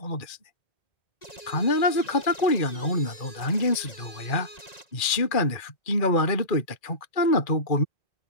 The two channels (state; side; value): late; right; 2.4 ms